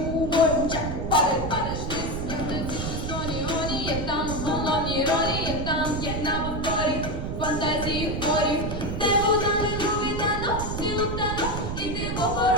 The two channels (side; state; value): right; noise; rumble, 4 dB below the sound